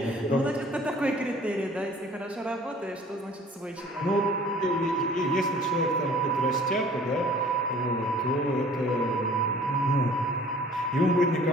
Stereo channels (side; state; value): both; normal; correlation 0.50